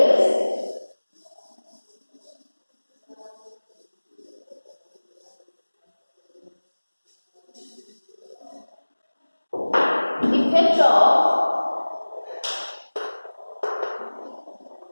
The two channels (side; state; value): both; inverted; correlation -1.00